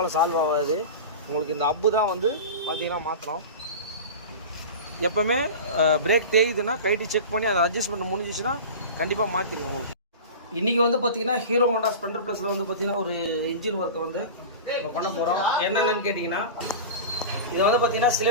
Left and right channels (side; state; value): both; inverted; correlation -0.30